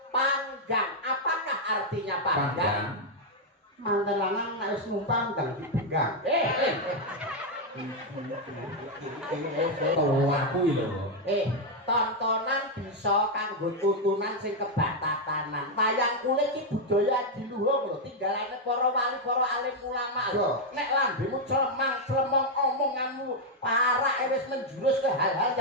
panggang apakah artinya panggang Manten lanang nek wis numpang ndang dibenggang. Tua kuwi lho. tontonan bisa kanggo tuntunan sing kebatatanan. Wayang kulit iki budaya diluhung lho, tinggalane para wali, para alim ulama. Nek lambemu clemang-clemong omonganmu parak wis menjurus ke hal-hal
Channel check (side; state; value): both; normal; correlation 0.01